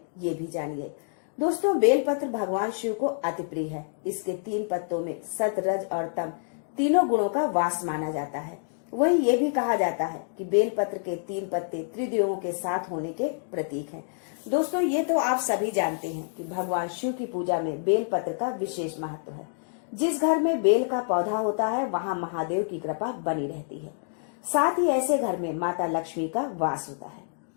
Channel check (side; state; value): right; silent; digital silence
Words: ये भी जानिए। दोस्तों, बेलपत्र भगवान शिव को अति प्रिय है। इसके 3 पत्तों में सत, रज और तम तीनों गुणों का वास माना जाता है। वहीं ये भी कहा जाता है कि बेलपत्र के 3 पत्ते त्रिदेवों के साथ होने के प्रतीक हैं। दोस्तों, ये तो आप सभी जानते हैं कि भगवान शिव की पूजा में बेलपत्र का विशेष महत्व है। जिस घर में बेल का पौधा होता है वहाँ महादेव की कृपा बनी रहती है। साथ ही ऐसे घर में माता लक्ष्मी का वास होता है।